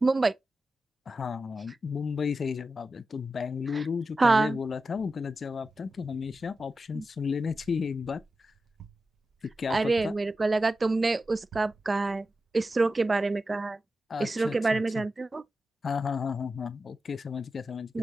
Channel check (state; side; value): normal; both; correlation 0.91